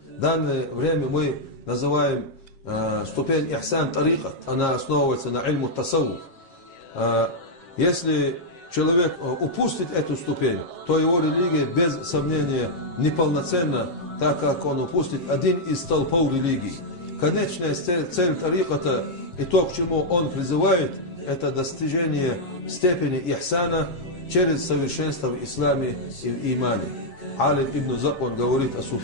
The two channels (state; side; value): late; right; 7.4 ms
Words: В данное время мы называем ступень ихсан тарикат. Она основывается на ильму тасауф. Если человек упустит эту ступень, то его религия без сомнения неполноценна, так как он упустит один из столпов религии. Конечная цель тариката и то, к чему он призывает, это достижение степени ихсана через совершенство в исламе и в имане. Алим ибн Заб, он говорит о